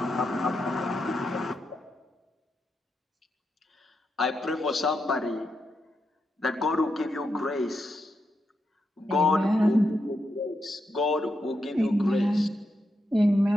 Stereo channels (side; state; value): both; normal; correlation 0.84